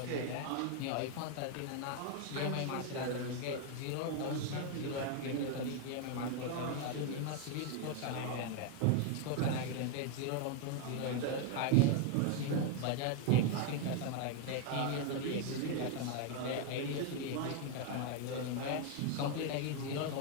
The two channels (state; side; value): different; both; correlation 0.01